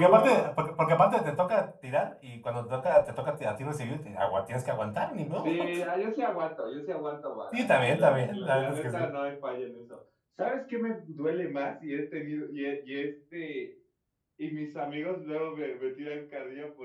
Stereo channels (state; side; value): identical; both; correlation 1.00